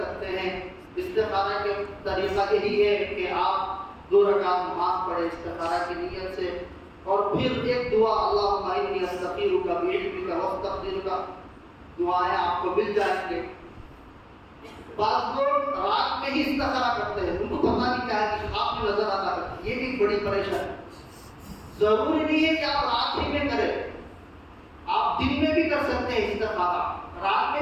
سکتے ہیں۔ استخارہ کے طریقہ یہی ہے کہ آپ 2 رکعت نماز پڑھیں استخارہ کی نیت سے، اور پھر ایک دعا اللہم انی استخیرک بعلمک واستقدرک، دعائیں آپ کو مل جائیں گے۔ بعض لوگ رات میں ہی استخارہ کرتے ہیں، ان کو پتہ نہیں کیا ہے کہ خواب میں نظر آتا ہے، یہ بھی بڑی پریشانی۔ ضروری نہیں ہے کہ آپ رات ہی میں کریں، آپ دن میں بھی کر سکتے ہیں استخارہ، رات میں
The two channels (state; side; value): identical; both; correlation 1.00